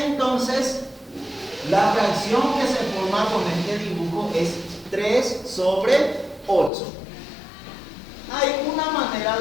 la fracción que se forma con este dibujo es 3 sobre 8. Hay una manera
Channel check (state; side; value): drops out; right; at 6.7 s